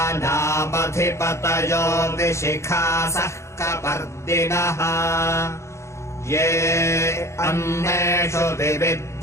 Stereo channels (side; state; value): right; late; 0.14 ms